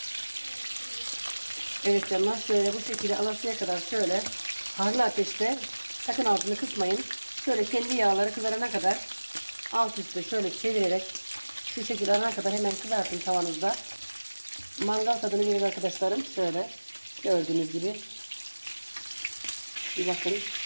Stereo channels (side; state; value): both; inverted; correlation -1.00